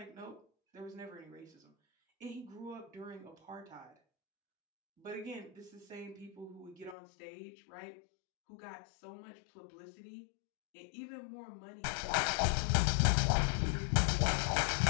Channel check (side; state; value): right; drops out; at 7.0 s